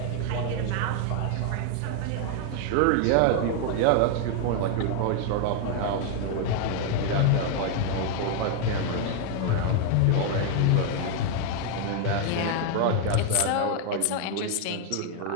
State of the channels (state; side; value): different; both; correlation 0.00